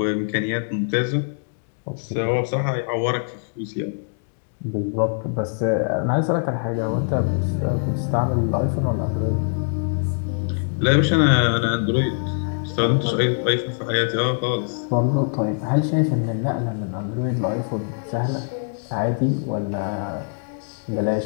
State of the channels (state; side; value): silent; right; digital silence